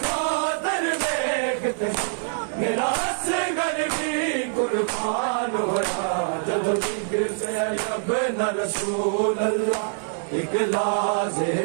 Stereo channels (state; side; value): silent; left; digital silence